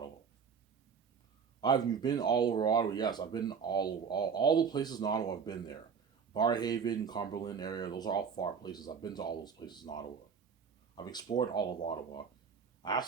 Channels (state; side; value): quieter; left; 6.4 dB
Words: You've been all over Ottawa. Yes, I've been all the places in Ottawa. I've been there. Barrhaven, Cumberland area. Those are all far places. I've been to all those places in Ottawa. I've explored all of Ottawa. I have